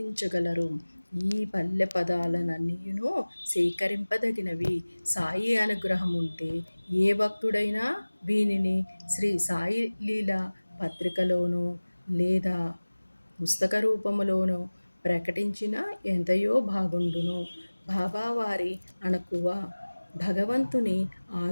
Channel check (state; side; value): inverted; both; correlation -1.00